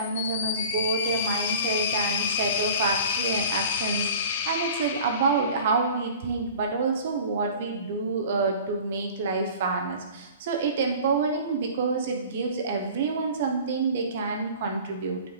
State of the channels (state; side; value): inverted; both; correlation -0.43